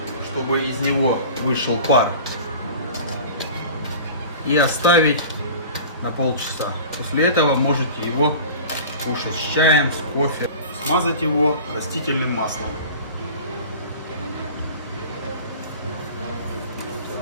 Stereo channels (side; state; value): both; inverted; correlation -0.39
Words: чтобы из него вышел пар. И оставить на полчаса. После этого можете его кушать с чаем, с кофе. Смазать его растительным маслом.